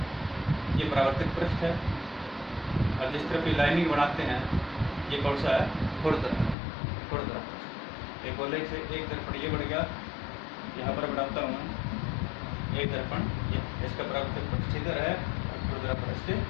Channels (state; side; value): drops out; right; at 6.6 s